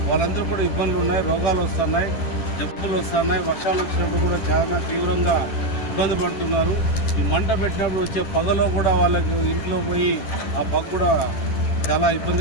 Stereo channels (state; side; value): late; right; 11 ms